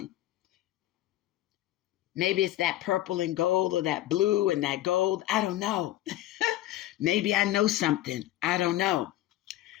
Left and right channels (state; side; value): quieter; right; 14.5 dB